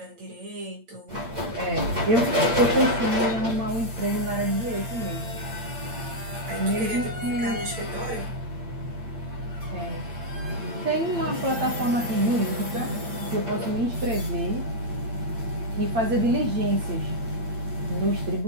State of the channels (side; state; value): left; late; 8.7 ms